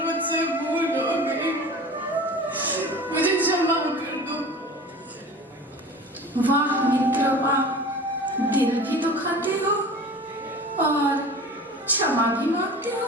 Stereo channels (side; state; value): both; normal; correlation 0.38